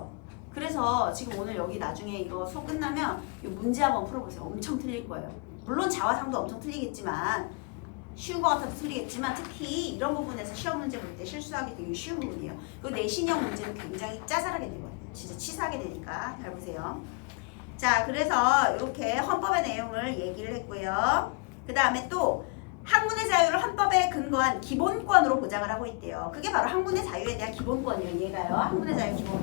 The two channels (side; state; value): right; quieter; 32.4 dB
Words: 그래서 지금 오늘 여기 나중에 이거 수업 끝나면 이 문제 한번 풀어보세요. 엄청 틀릴 거예요. 물론 자화상도 엄청 틀리겠지만 쉬운 거 같아도 틀리겠지만 특히 이런 부분에서 시험 문제 볼 때 실수하기 되게 쉬운 부분이에요. 그리고 내신형 문제는 굉장히 짜잘하게 되거든요. 진짜 치사하게 되니까 잘 보세요. 자, 그래서 이렇게 헌법의 내용을 얘기를 했고요. 그 다음에 또 학문의 자유를 헌법에 근거한 기본권으로 보장을 하고 있대요. 그게 바로 학문의 자유에 대한 기본권이에요. 얘가요. 학문의 자유